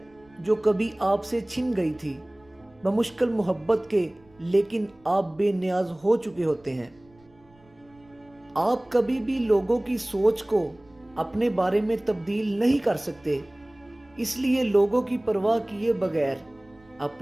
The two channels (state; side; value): noise; right; rumble, 30 dB below the sound